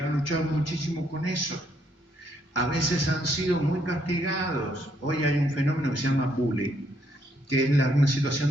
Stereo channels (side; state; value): both; normal; correlation 0.72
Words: luchado muchísimo con eso. A veces han sido muy castigados. Hoy hay un fenómeno que se llama bullying, que es una